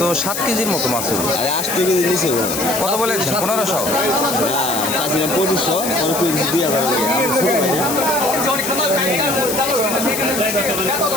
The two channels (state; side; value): noise; left; hiss, 4 dB below the sound